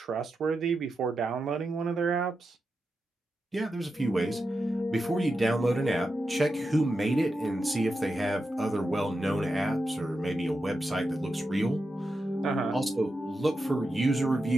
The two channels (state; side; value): normal; both; correlation 0.89